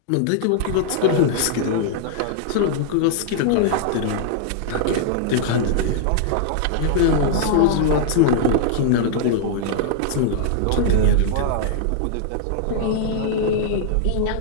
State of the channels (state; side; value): different; both; correlation -0.01